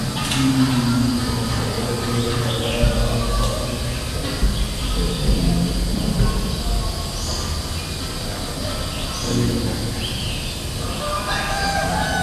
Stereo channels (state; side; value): identical; both; correlation 1.00